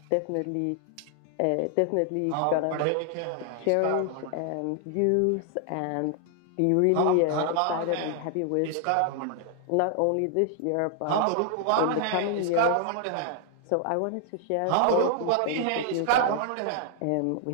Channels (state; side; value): different; both; correlation 0.00